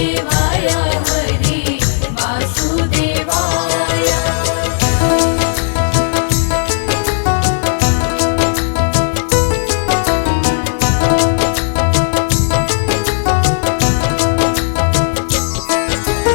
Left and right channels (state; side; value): silent; right; digital silence